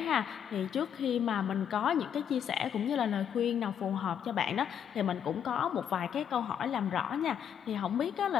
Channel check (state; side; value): quieter; right; 8.7 dB